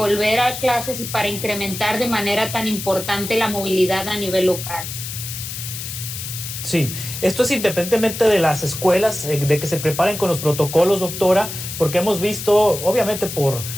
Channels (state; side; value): noise; left; hiss, 8 dB below the sound